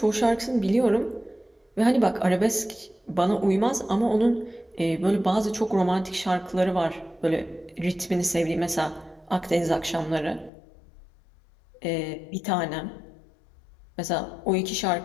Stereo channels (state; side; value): drops out; right; at 10.5 s